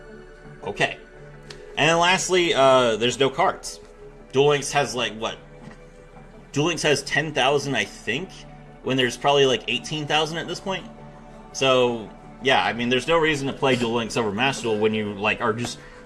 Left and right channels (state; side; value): identical; both; correlation 1.00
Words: Okay. And then lastly, there's no cards. Duel Links has Duel Links has 10,000, I think, when there's probably like 18,000 at this point. So, yeah, I mean, there's no reason to play Duel Links over Master Duel when you, are just,